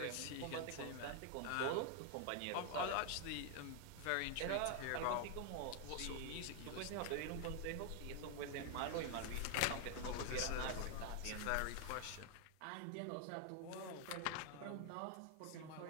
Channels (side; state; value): both; different; correlation 0.00